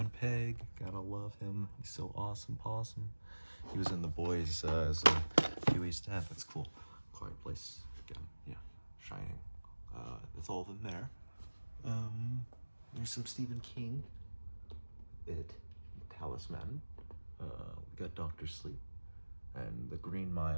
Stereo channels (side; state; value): both; inverted; correlation -1.00